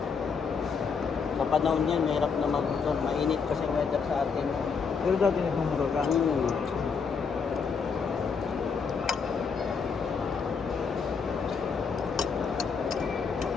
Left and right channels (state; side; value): quieter; right; 5.7 dB